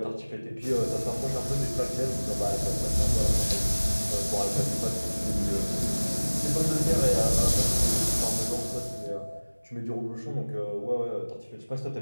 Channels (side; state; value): both; inverted; correlation -1.00